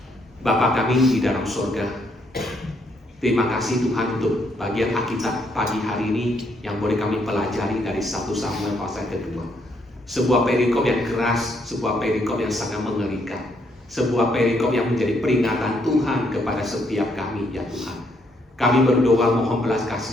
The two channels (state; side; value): normal; both; correlation 0.73